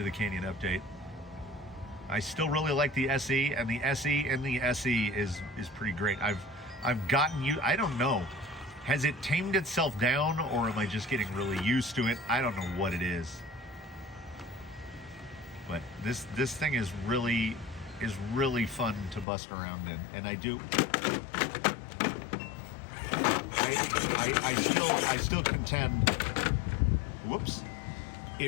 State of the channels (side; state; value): right; drops out; at 19.2 s